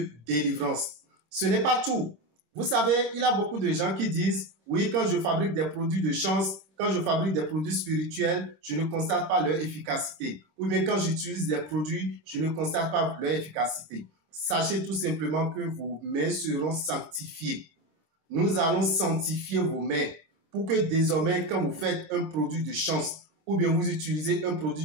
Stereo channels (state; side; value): late; left; 26 ms